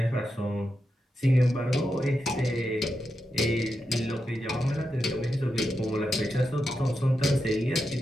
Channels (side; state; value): both; normal; correlation 0.87